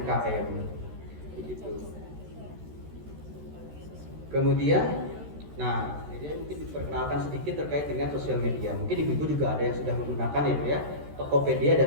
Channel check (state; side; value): late; left; 13 ms